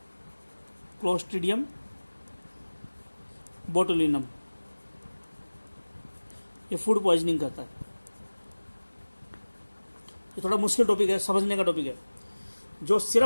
क्लोस्ट्रीडियम बोटुलिनम, ये फूड पॉइजनिंग करता है। ये थोड़ा मुश्किल टॉपिक है, समझने का टॉपिक है। जो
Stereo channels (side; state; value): both; inverted; correlation -1.00